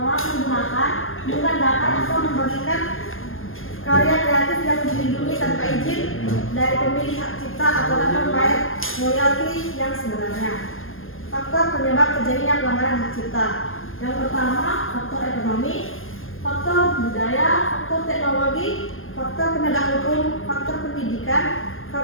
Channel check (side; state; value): right; late; 0.60 ms